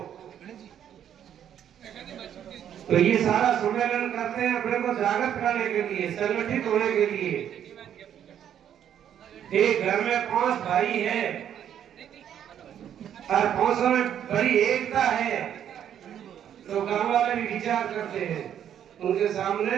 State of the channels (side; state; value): left; quieter; 9.7 dB